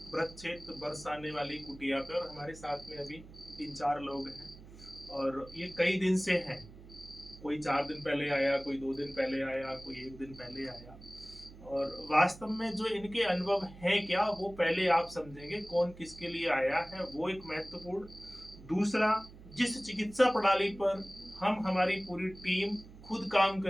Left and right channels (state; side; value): noise; right; hum, 18 dB below the sound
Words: ब्रह्मक्षेत्र बरसाने वाली कुटिया पे और हमारे साथ में अभी 3-4 लोग हैं और ये कई दिन से हैं। कोई 4 दिन पहले आया, कोई 2 दिन पहले आया, कोई 1 दिन पहले आया। और वास्तव में जो इनके अनुभव हैं क्या, वो पहले आप समझेंगे कौन किसके लिए आया है, वो एक महत्वपूर्ण। दूसरा, जिस चिकित्सा प्रणाली पर हम हमारी पूरी टीम खुद काम